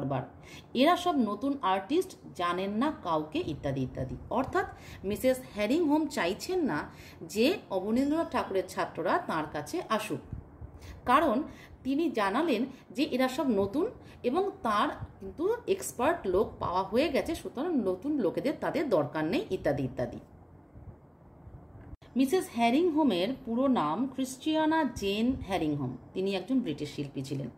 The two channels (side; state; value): both; identical; correlation 1.00